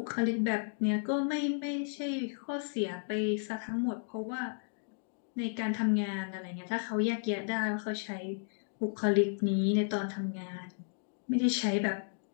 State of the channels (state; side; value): silent; right; digital silence